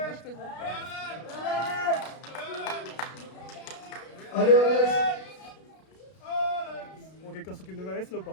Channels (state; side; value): late; right; 32 ms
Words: moi je présente. Allez, Alex. Bon, quelqu'un s'occupe de ma veste là ou